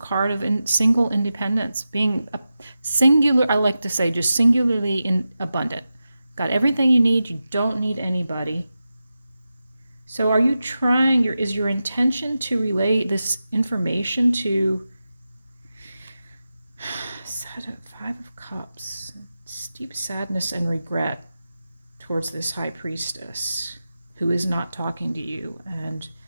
of single independence. Being a singular, I like to say, just singularly abundant. Got everything you need. You don't need anybody. So are you trying, is your intention to relay this information to Five of Cups, deep sadness and regret towards this High Priestess who is not talking to you, and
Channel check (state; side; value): inverted; both; correlation -0.92